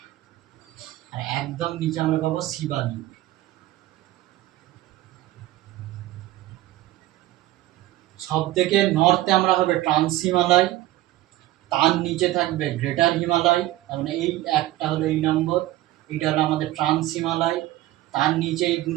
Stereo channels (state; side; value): quieter; left; 16.0 dB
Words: আর একদম নিচে আমরা পাবো শিবালিক। সব থেকে নর্থে আমরা হবে ট্রান্স হিমালয়, তার নিচে থাকবে গ্রেটার হিমালয়, তার মানে এই একটা হলো এই নম্বর, এইটা হলো আমাদের ট্রান্স হিমালয়, তার নিচে এই 2